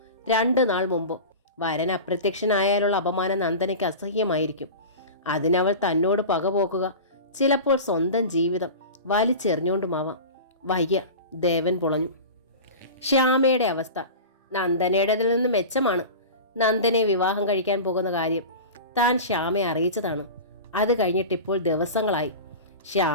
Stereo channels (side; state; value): both; inverted; correlation -0.31